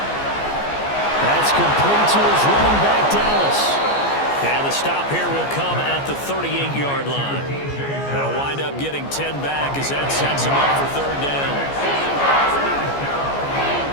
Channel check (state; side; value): late; right; 14 ms